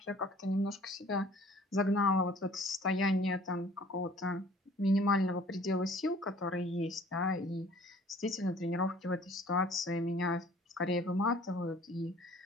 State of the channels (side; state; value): both; normal; correlation 0.53